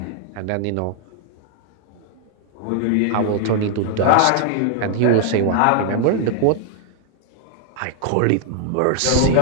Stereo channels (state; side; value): different; both; correlation 0.00